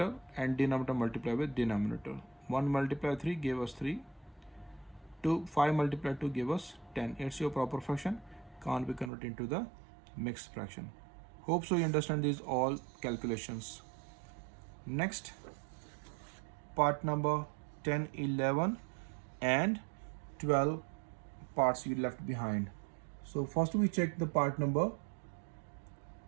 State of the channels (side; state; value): left; drops out; at 9.1 s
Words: and denominator multiply with denominator. 1 multiply 3 gave us 3. 5 multiply 2 gave us 10. It's your proper fraction. Can't be converted into the mixed fraction. Hope so you understand these all calculations. Next, part number 10, 11 and 12 parts you left behind. So first we check the part number